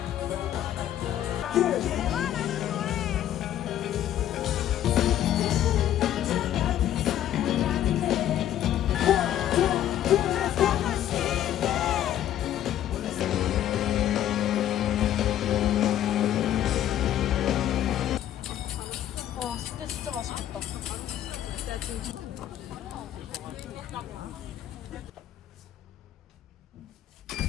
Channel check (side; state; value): right; quieter; 11.7 dB